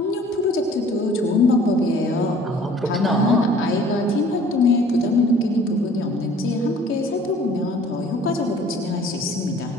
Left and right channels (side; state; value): both; normal; correlation 0.52